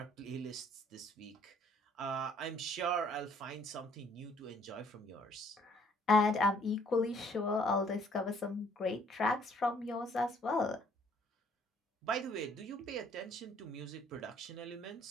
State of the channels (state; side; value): normal; both; correlation 0.61